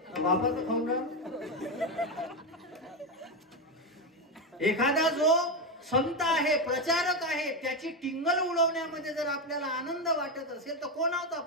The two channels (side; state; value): both; normal; correlation 0.11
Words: बापाचं खाऊन राह. एखादा जो संत आहे, प्रचारक आहे, त्याची टिंगल उडवण्यामध्ये जर आपल्याला आनंद वाटत असेल तर कोण आहोत